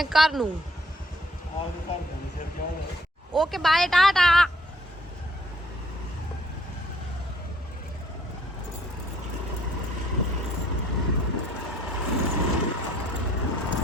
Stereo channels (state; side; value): normal; both; correlation 0.63